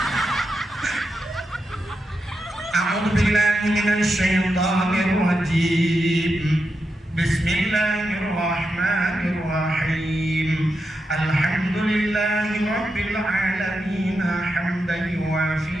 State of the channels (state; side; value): normal; both; correlation 0.87